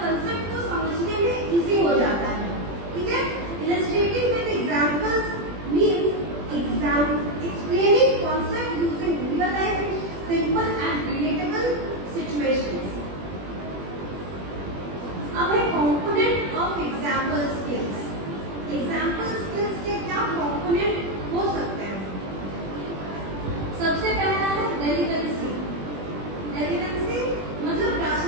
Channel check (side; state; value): left; late; 21 ms